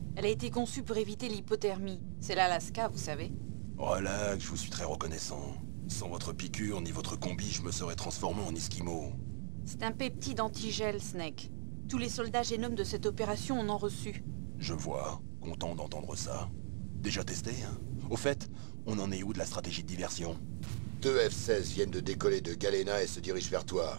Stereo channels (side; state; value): left; silent; digital silence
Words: Elle a été conçue pour éviter l'hypothermie. C'est l'Alaska, vous savez. Relax, je vous suis très reconnaissant. Sans votre piqûre ni votre combi, je me serais transformé en esquimau. C'est un peptide antigel, Snake. Tous les soldats génomes de cette opération en ont reçu. Je vois, content d'entendre ça. Déjà testé, hein? Au fait, on en est où de la stratégie de diversion? 2 F-16 viennent de décoller de Galena et se dirigent vers toi.